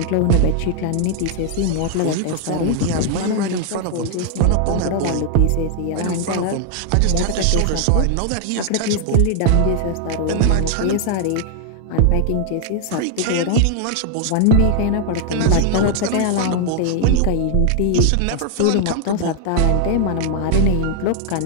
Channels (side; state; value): both; different; correlation 0.00